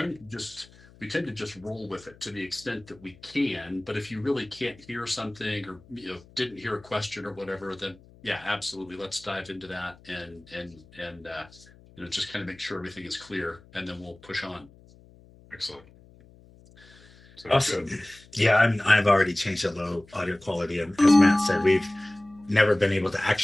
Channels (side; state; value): left; noise; hum, 25 dB below the sound